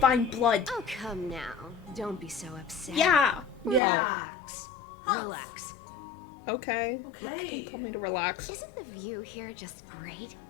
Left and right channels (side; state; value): right; drops out; at 3.8 s